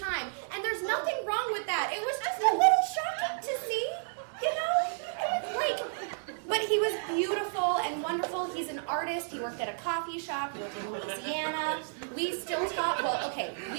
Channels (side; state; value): left; silent; digital silence